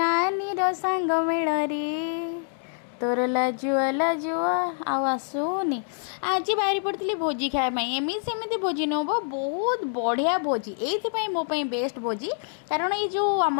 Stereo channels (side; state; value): right; silent; digital silence